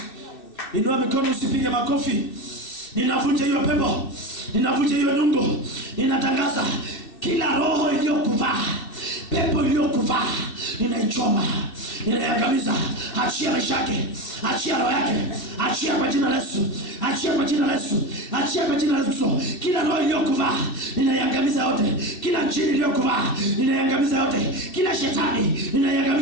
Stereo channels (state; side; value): late; right; 2.6 ms